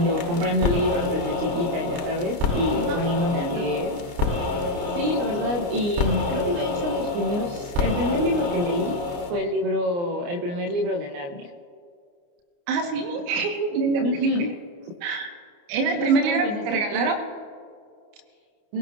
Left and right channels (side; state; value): left; late; 29 ms